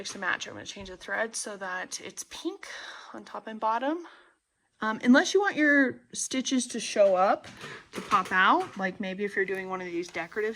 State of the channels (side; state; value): both; identical; correlation 1.00